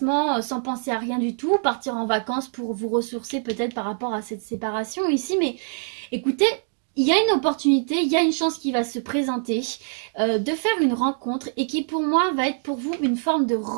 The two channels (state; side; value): silent; left; digital silence